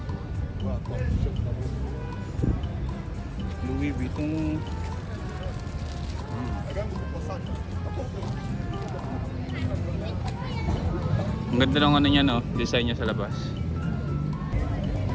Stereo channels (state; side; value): identical; both; correlation 1.00